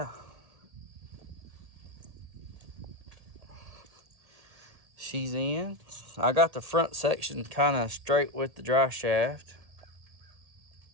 she's in. I got the front section kind of straight with the drive shaft,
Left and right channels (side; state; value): left; late; 1.8 ms